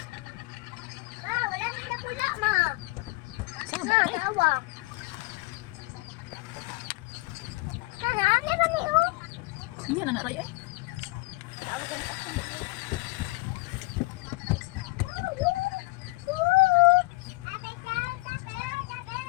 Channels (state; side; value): quieter; right; 24.4 dB